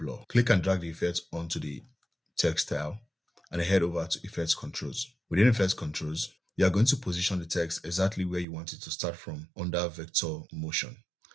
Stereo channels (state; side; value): drops out; left; at 8.5 s